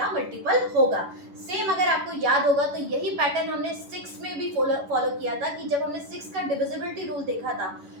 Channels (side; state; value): left; late; 11 ms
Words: मल्टीपल होगा। सेम अगर आपको याद होगा तो यही पैटर्न हमने 6 में भी फॉलो किया था कि जब हमने 6 का डिविजिबिलिटी रूल देखा था